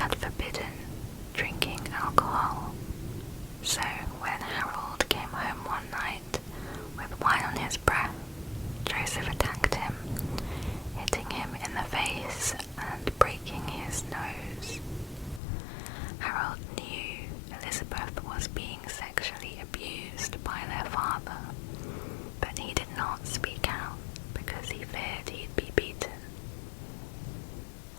forbidden drinking alcohol, so when Harold came home one night with wine on his breath, Joseph attacked him, hitting him in the face and breaking his nose. Harold knew Elizabeth was being sexually abused by their father, but he did not speak out because he feared he'd be beaten.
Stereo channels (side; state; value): right; drops out; at 15.4 s